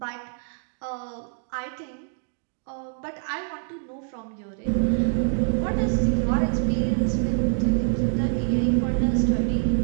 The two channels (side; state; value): left; silent; 61 dB below the other